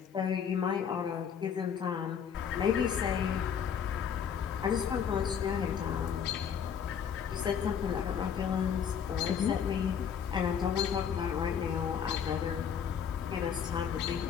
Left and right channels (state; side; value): quieter; right; 7.7 dB